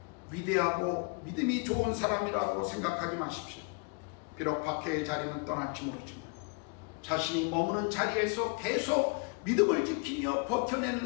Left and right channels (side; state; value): right; quieter; 33.4 dB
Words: 위대하고 믿음이 좋은 사람이라고 생각하지 마십시오. 비록 박해의 자리는 떠날지 모르지만 자신이 머무는 자리에서 계속 믿음을 지키며